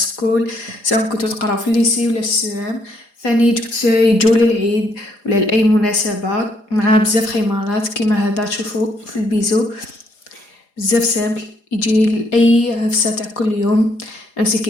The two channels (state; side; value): late; right; 4.9 ms